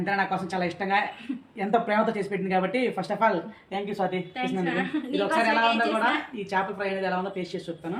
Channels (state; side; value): identical; both; correlation 1.00